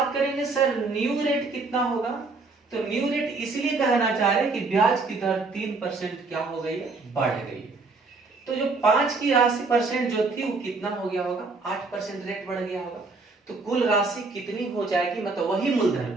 करेंगे सर न्यू रेट कितना होगा, तो न्यू रेट इसलिए कहना चाह रहे हैं कि ब्याज की दर 3% क्या हो गई है, बढ़ गई है। तो जो 5 की राशि परसेंट जो थी वो कितना हो गया होगा 8% रेट बढ़ गया होगा। तो कुल राशि कितनी हो जाएगी, मतलब वही मूलधन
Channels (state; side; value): quieter; left; 3.8 dB